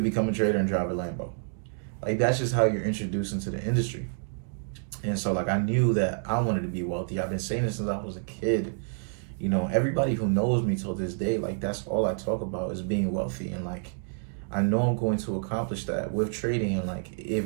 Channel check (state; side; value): silent; left; digital silence